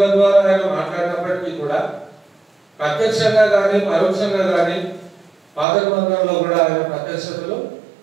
ద్వారా ఆయన మాట్లాడినప్పటికీ కూడా ప్రత్యక్షంగా కానీ పరోక్షంగా కానీ పాత నిబంధనలో కూడా ఆయన ప్రత్యక్షతలు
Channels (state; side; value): drops out; left; at 5.7 s